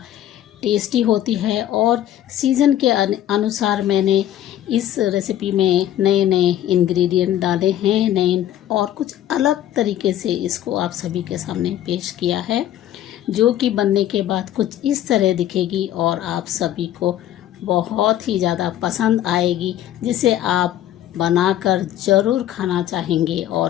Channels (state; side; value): quieter; right; 12.1 dB